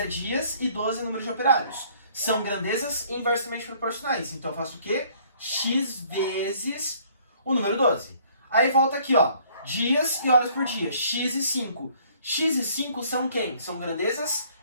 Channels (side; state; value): both; inverted; correlation -0.59